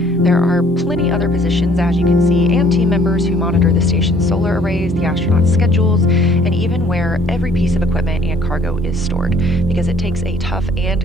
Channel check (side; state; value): both; normal; correlation 0.58